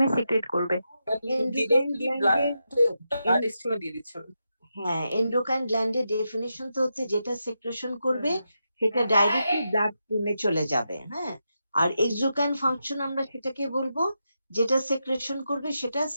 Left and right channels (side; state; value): both; inverted; correlation -0.86